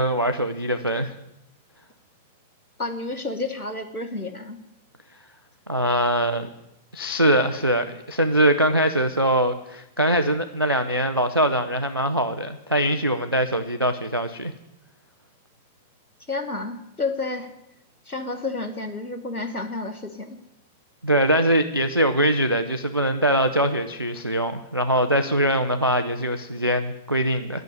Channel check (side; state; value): both; inverted; correlation -0.39